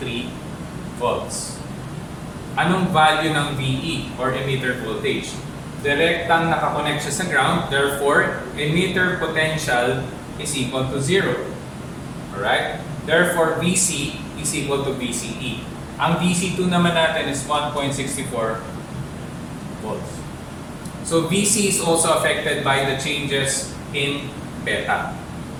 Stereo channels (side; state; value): both; identical; correlation 1.00